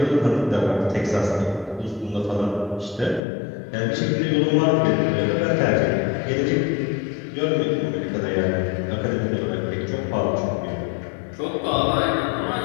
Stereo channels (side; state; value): right; drops out; at 3.2 s